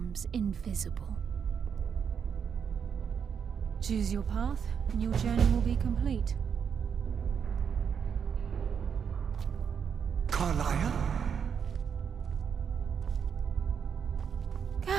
invisible. Choose your path, and your journey will be complete. Carlia?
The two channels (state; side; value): quieter; left; 7.1 dB